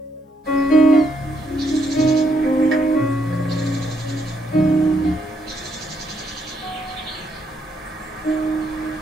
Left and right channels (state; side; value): normal; both; correlation 0.75